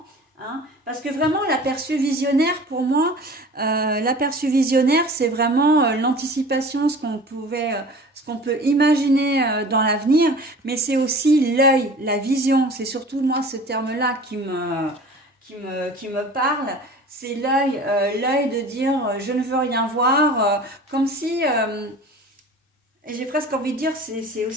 Hein, parce que vraiment l'aperçu visionnaire pour moi, l'aperçu visionnaire c'est vraiment l'anticipation, ce qu'on peut imaginer dans l'avenir, mais c'est aussi l'œil, la vision. C'est surtout moi ce terme-là qui me parle. C'est l'œil, l'œil de dire je ne veux rien voir, comme si, et j'ai presque envie de dire, c'est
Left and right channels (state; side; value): normal; both; correlation 0.42